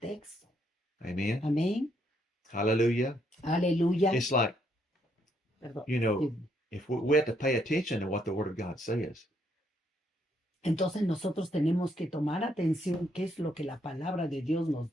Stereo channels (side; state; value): both; normal; correlation 0.73